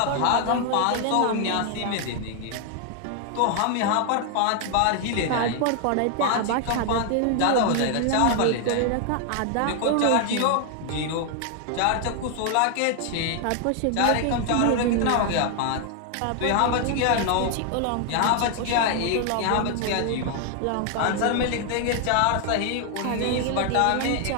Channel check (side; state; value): both; different; correlation 0.00